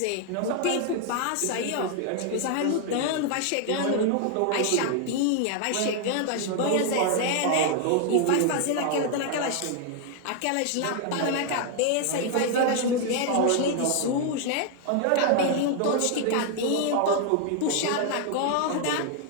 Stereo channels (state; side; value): different; both; correlation 0.00